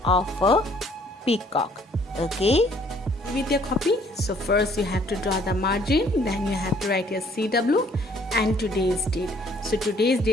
of a peacock. Okay? With your copy, so first you have to draw the margin, then you have to write your CW and today's date. So today's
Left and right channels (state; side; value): normal; both; correlation 0.61